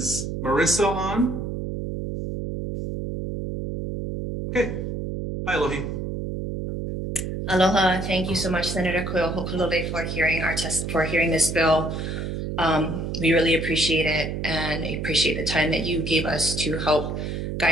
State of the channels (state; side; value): noise; right; hum, 4 dB below the sound